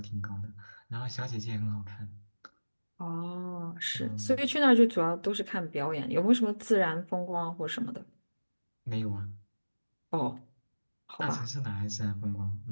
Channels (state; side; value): inverted; both; correlation -1.00